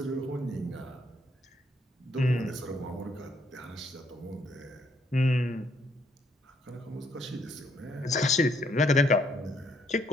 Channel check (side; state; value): both; normal; correlation 0.70